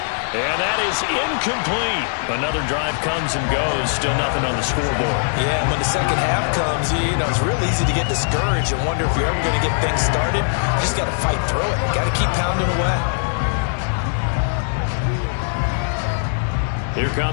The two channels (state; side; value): silent; right; digital silence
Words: And that is incomplete. Another drive comes and goes. Still nothing on the scoreboard. Yeah, when the second half comes, you know, it's real easy to get discouraged and wonder if you're ever going to get things started. You just got to fight through it. Got to keep pounding away. Here